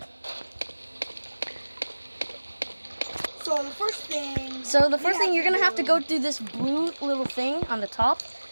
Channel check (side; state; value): both; inverted; correlation -1.00